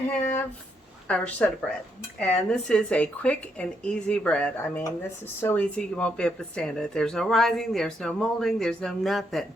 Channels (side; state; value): both; normal; correlation 0.77